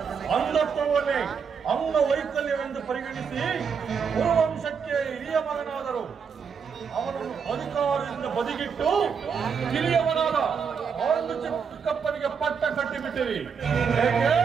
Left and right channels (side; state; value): left; quieter; 6.3 dB